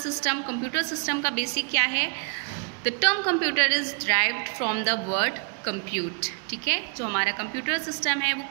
Computer system का बेसिक क्या है? The term computer is derived from the word compute. ठीक है, जो हमारा कंप्यूटर सिस्टम है वो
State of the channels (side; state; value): left; quieter; 39.3 dB